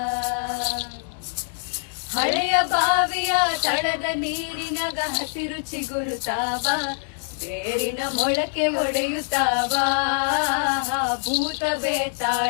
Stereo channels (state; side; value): silent; right; 62 dB below the other